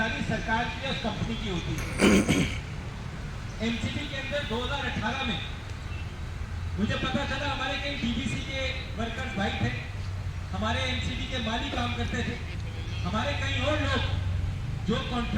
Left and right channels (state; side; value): identical; both; correlation 1.00